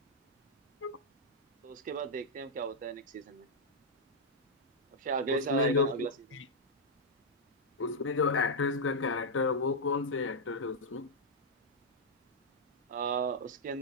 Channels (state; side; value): normal; both; correlation -0.04